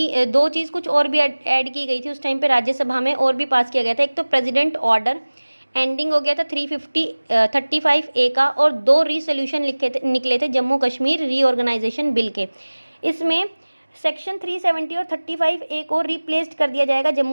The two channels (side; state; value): both; inverted; correlation -1.00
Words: दो चीज़ कुछ और भी ऐड की गई थी उस टाइम पे राज्यसभा में, और भी पास किया गया था। एक तो प्रेसिडेंट ऑर्डर एंडिंग हो गया था 35A का, और 2 रीसोल्यूशन निकले थे जम्मू कश्मीर रीऑर्गेनाइजेशन बिल के। इसमें सेक्शन 370 और 35A को रिप्लेस्ड कर दिया जाएगा